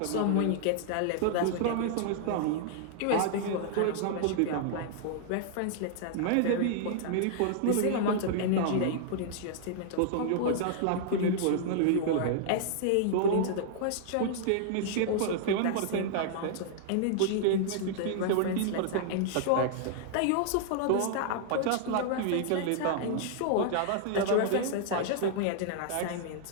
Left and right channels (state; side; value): different; both; correlation -0.01